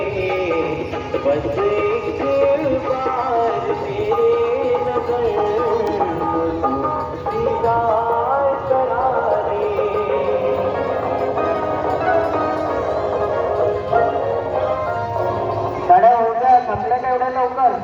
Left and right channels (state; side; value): identical; both; correlation 1.00